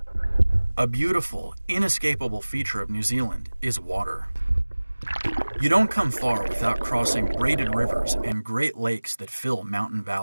A beautiful, inescapable feature of New Zealand is water. You don't come far without crossing braided rivers and great lakes that fill mountain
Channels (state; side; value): inverted; both; correlation -1.00